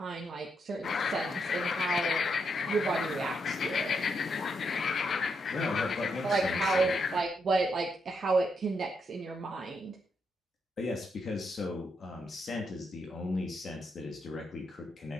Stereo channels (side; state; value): both; normal; correlation 0.80